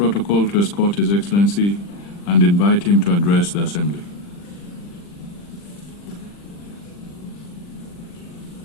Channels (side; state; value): right; late; 40 ms